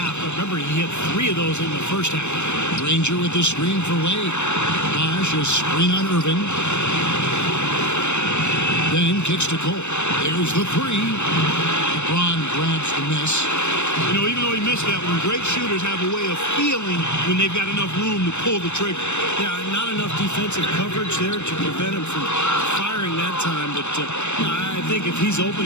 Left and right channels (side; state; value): right; late; 0.82 ms